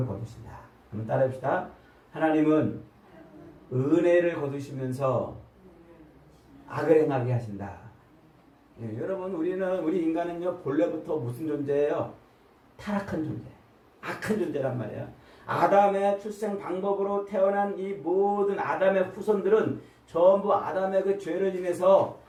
거두신다. 한번 따라해봅시다. 하나님은 은혜를 거두시면서 악을 행하게 하신다. 예, 여러분, 우리 인간은요, 본래부터 무슨 존재예요? 타락한 존재, 악한 존재란 말이에요. 아담의 출생 방법으로 태어난 이 모든 아담의 후손들은 전부 아담의 그 죄를 인해서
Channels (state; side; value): identical; both; correlation 1.00